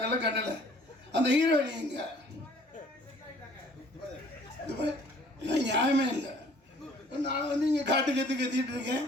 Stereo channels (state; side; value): normal; both; correlation 0.55